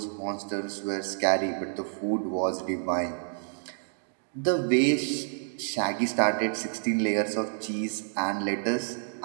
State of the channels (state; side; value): silent; left; digital silence